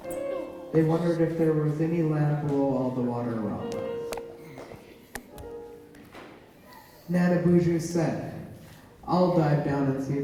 They wondered if there was any land below all the water around them. Nana Buju said, "I'll dive down and see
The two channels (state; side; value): identical; both; correlation 1.00